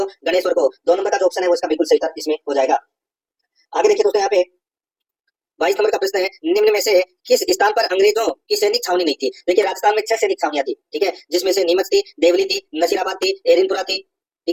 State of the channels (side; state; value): both; identical; correlation 1.00